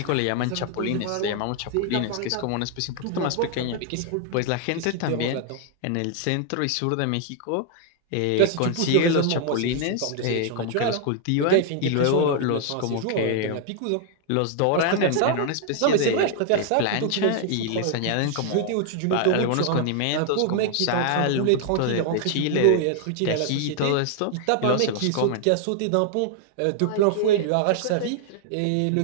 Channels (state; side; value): different; both; correlation 0.00